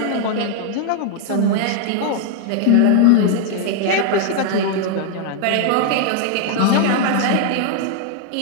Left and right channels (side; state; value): both; different; correlation 0.00